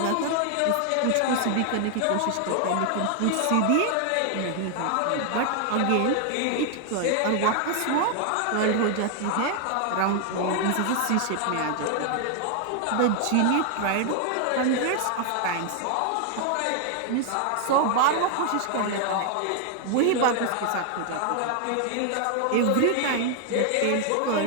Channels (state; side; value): different; both; correlation 0.00